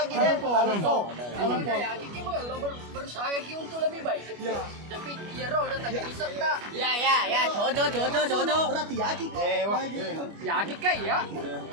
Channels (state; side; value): late; left; 25 ms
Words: deh. Kalau Ya, kita kalau berusaha lagi untuk lebih baik. Tapi dia roh dah tak jadi serta. Ya, jodoh. berarti yakin kau. Ya, kita ya.